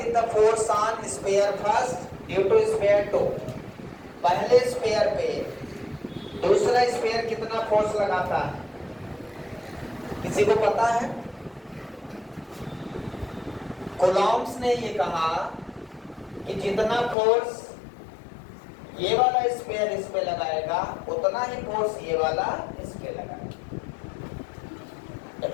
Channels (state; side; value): drops out; right; at 17.2 s